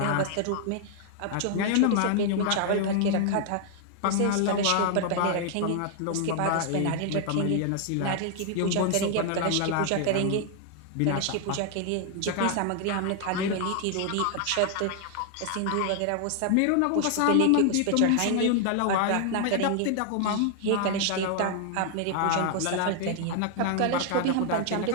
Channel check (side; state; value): both; different; correlation 0.00